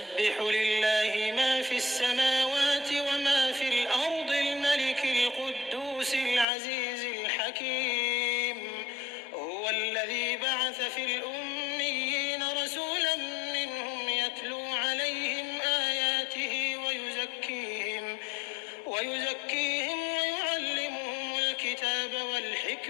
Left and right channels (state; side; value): drops out; right; at 6.5 s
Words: لله ما في السماوات وما في الأرض الملك القدوس العزيز الحكيم. هو الذي بعث في الأميين رسولا منهم يتلو عليهم آياته ويزكيهم ويعلمهم الكتاب